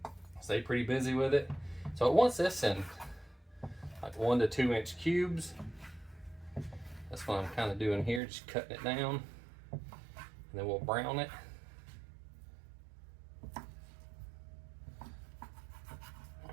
Stay pretty busy with it. So it wants this in like 1 to 2 inch cubes. That's what I'm kind of doing here, just cutting it down, and then we'll brown it.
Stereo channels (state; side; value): drops out; left; at 8.2 s